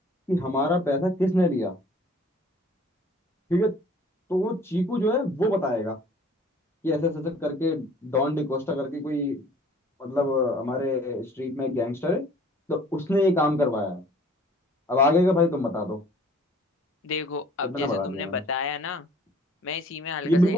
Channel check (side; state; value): both; normal; correlation 0.53